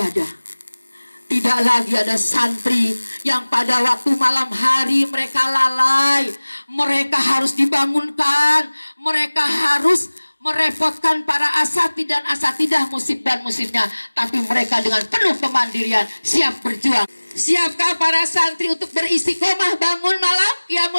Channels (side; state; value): both; inverted; correlation -1.00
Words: Tidak lagi ada santri yang pada waktu malam hari mereka lalai. Mereka harus dibangunkan. Mereka harus merepotkan para asatid dan asatidah, musib dan musibnya. Tapi mereka dengan penuh kemandirian siap berjuang. Siapkah para santri untuk beristiqomah bangun malam